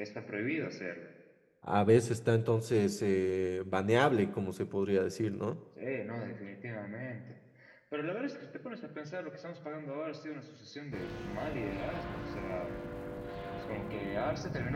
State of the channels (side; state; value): both; identical; correlation 1.00